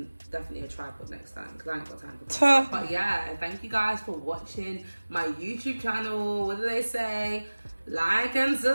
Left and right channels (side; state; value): both; inverted; correlation -1.00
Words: definitely a tripod next time because I ain't got time for that. But yeah, thank you guys for watching my YouTube channel. What do they say? Like and